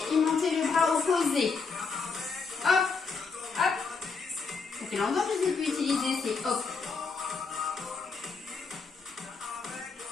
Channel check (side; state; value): right; quieter; 4.8 dB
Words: et monter le bras opposé. Hop, hop. Ça fait longtemps que je ne l'ai plus utilisé, c'est hop.